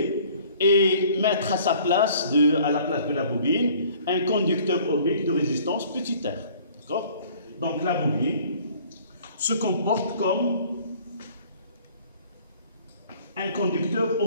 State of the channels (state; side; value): inverted; both; correlation -0.53